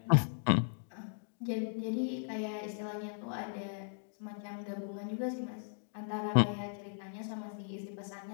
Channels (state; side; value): silent; right; digital silence